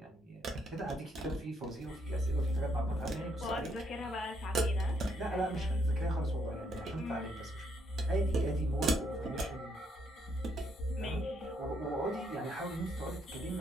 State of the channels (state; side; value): normal; both; correlation 0.73